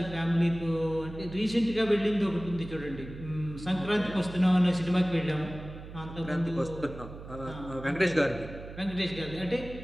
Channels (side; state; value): right; noise; hum, 13 dB below the sound